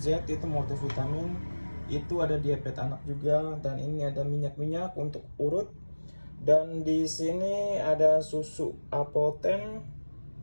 itu multivitamin, itu ada diabetes anak juga. Dan ini ada minyak-minyak untuk urut. Dan di sini ada susu Apoten,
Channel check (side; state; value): both; inverted; correlation -1.00